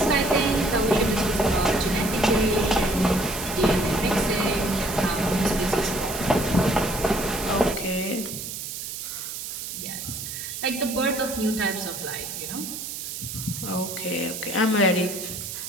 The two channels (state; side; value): noise; right; hiss, 7 dB below the sound